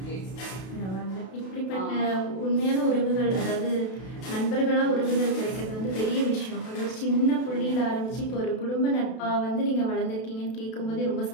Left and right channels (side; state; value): right; late; 32 ms